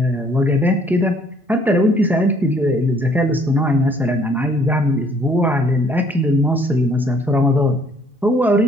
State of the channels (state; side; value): normal; both; correlation 0.61